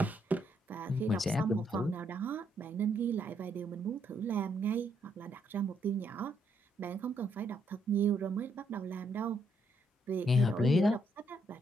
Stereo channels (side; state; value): both; normal; correlation 0.74